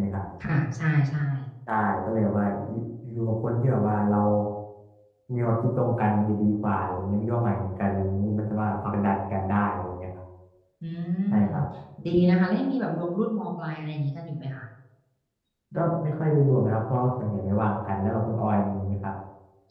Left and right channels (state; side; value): identical; both; correlation 1.00